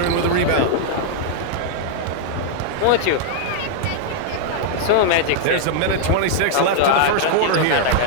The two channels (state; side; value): different; both; correlation -0.01